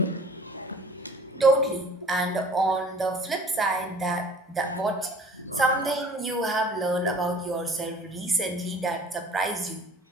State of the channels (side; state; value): both; normal; correlation 0.49